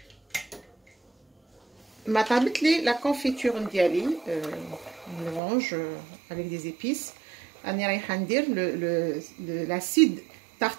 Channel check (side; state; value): left; drops out; at 5.4 s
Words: ما طابت لي لا كونفيتور ديالي l'orange avec des épices. راني رايحه ندير l'acide